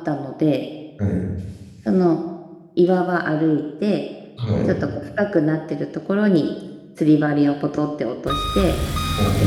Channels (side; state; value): both; identical; correlation 1.00